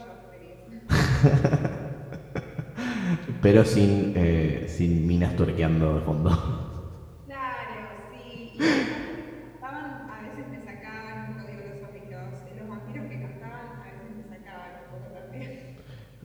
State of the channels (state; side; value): identical; both; correlation 1.00